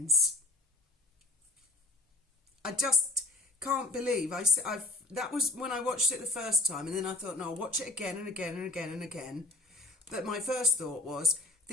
I just can't believe that was when I watched it the first time, and then I thought, no, I'll watch it again and again and again and again. But my first thought was,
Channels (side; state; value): right; quieter; 3.2 dB